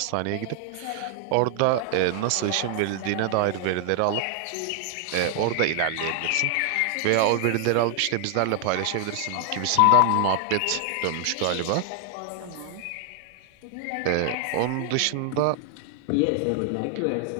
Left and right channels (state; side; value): different; both; correlation 0.00